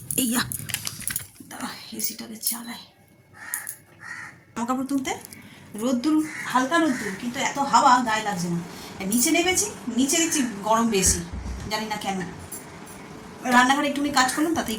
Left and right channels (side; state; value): both; identical; correlation 1.00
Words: এইয়া দাঁড়া, এসিটাকে চালাই। জামা কাপড় তুলতে রোদ্দুর, হালকা রোদ্দুর, কিন্তু এত হাওয়া গায়ে লাগছে না। নিচে নেমেছি, নিচে দেখছি গরম বেশি, জানি না কেন। রান্নাঘরে একটুখানি কাজ করলাম, তাতেই